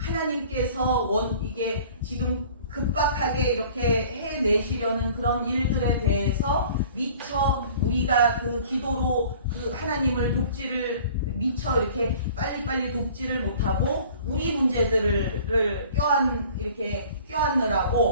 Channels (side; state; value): both; inverted; correlation -0.49